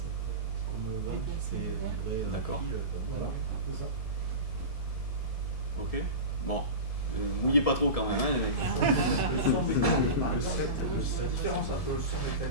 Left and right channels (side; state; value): right; late; 1.7 ms